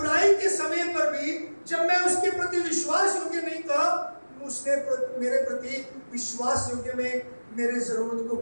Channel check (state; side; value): inverted; both; correlation -1.00